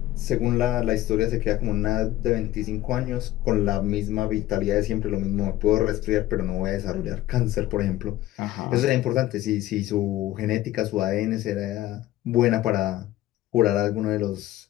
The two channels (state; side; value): quieter; right; 15.3 dB